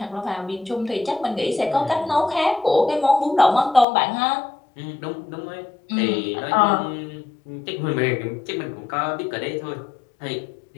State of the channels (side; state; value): right; drops out; at 3.9 s